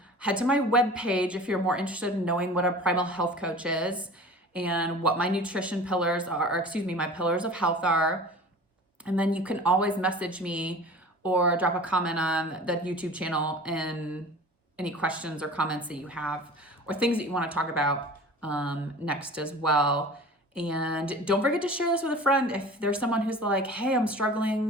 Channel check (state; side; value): normal; both; correlation 0.40